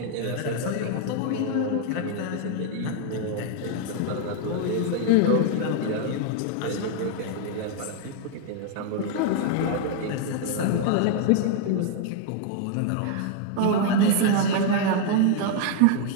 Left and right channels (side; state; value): both; different; correlation 0.00